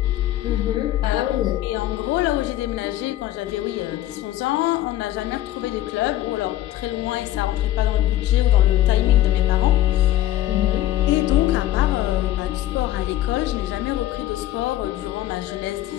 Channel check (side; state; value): right; quieter; 14.0 dB